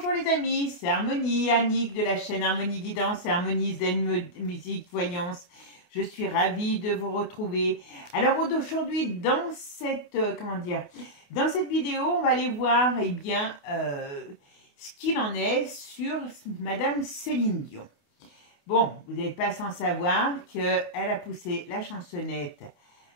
les amis, c'est Harmonie, Annick de la chaîne Harmonie Guidance et Harmonie Zen Musique Voyance. Je suis ravie de vous retrouver. Alors aujourd'hui, dans cette, dans cette vidéo, on va aller voir ce qu'il en est sur Madame Céline Dion. Bon, vous n'êtes pas sans savoir qu'elle a poussé la chansonnette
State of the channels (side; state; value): right; late; 28 ms